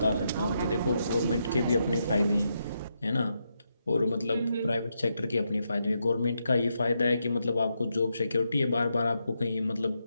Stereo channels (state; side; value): inverted; both; correlation -0.82